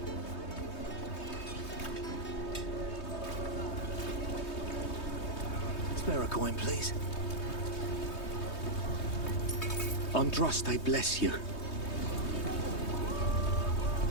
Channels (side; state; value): right; late; 3.2 ms